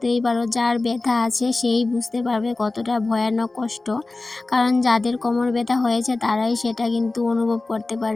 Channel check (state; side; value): quieter; right; 3.2 dB